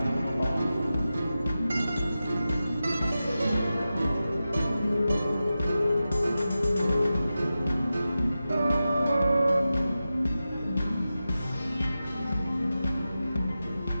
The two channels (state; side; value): inverted; both; correlation -0.93